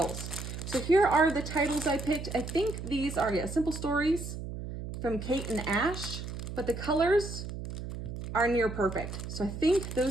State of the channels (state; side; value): noise; right; hum, 8 dB below the sound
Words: So here are the titles I picked. I think these are, yeah, Simple Stories from Kate and Ash, but the colors are near perfect. So I think